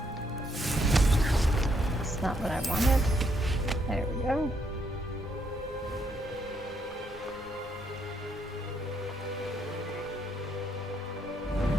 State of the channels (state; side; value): normal; both; correlation 0.73